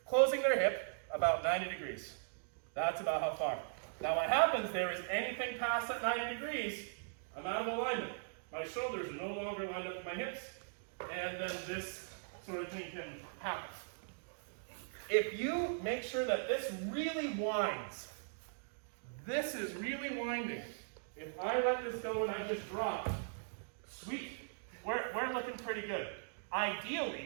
closing their hip about 90 degrees. That's about how far. Now what happens there is anything past that 90 degrees, I'm out of alignment. My shoulders are no longer lined up with my hips, and then this sort of thing can happen. If you make sure that this really winds, this is really winding. If I let this go and I just drop, sweet, we're looking pretty good.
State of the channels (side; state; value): left; silent; digital silence